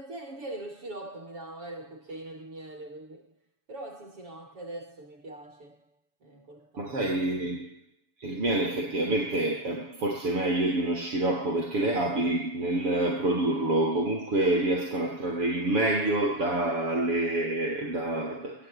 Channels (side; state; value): left; late; 7.1 ms